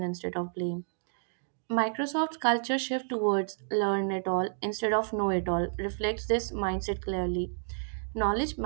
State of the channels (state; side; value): silent; left; digital silence